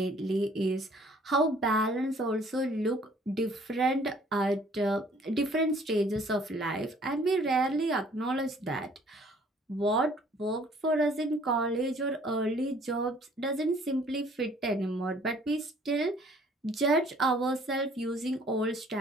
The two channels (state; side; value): normal; both; correlation 0.57